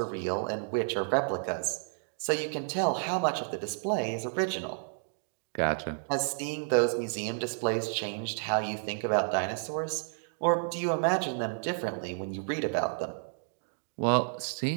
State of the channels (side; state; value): left; silent; digital silence